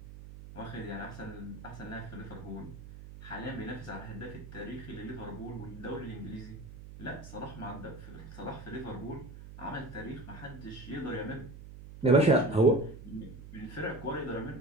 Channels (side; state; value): right; noise; hum, 13 dB below the sound